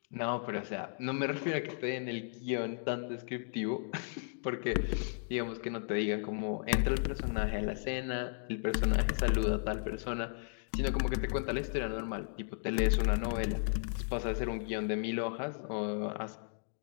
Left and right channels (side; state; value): right; silent; digital silence